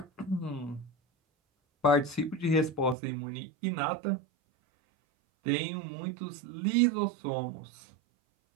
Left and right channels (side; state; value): left; drops out; at 3.0 s